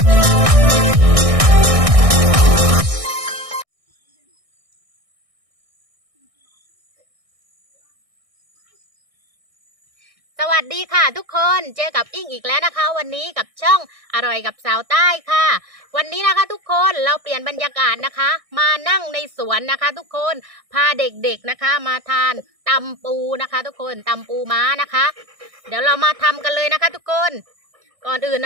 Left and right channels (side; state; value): left; late; 1.6 ms